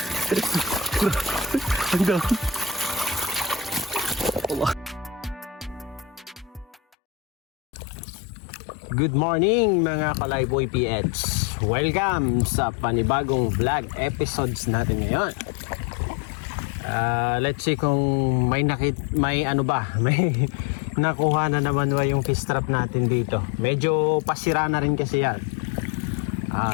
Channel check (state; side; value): drops out; right; at 6.8 s